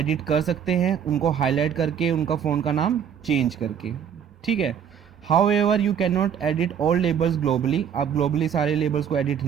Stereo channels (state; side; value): quieter; left; 8.2 dB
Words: कर सकते हैं, उनको हाईलाइट करके उनका फ़ोन का नाम चेंज करके, ठीक है। However you can not edit all labels globally. आप ग्लोबली सारे लेबल्स को एडिट